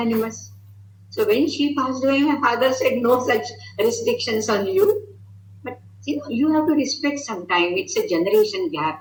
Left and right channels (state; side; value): identical; both; correlation 1.00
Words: So when she passed away, my father said, no such restrictions on you. But you have to respect sometime. It's a generation